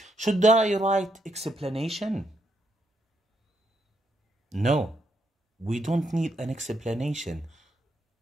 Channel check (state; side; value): normal; both; correlation 0.78